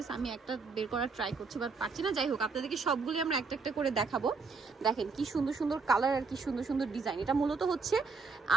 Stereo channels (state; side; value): quieter; left; 4.6 dB